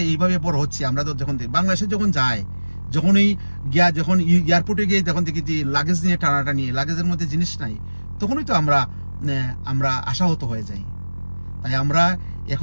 এইভাবে বড় হচ্ছে, আমরা তো যখন বাংলাদেশে যখন যায়, যখন এয়ারপোর্টে গিয়ে যখন দেখি যে লাগেজ নিয়ে টানাটানি, লাগেজের মধ্যে জিনিস নাই, তখনই তো আমরা আশাহত হয়ে যাই। তাই আমরা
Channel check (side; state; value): both; inverted; correlation -1.00